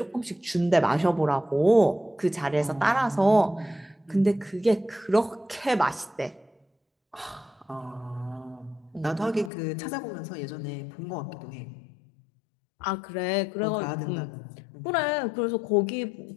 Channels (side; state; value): right; drops out; at 9.5 s